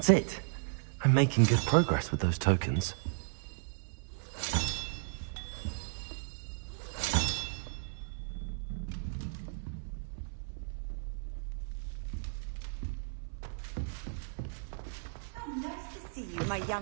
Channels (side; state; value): left; silent; 55 dB below the other